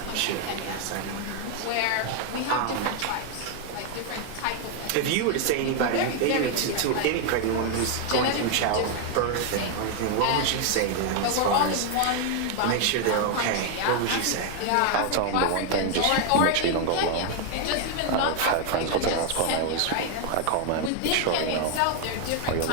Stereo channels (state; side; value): different; both; correlation 0.00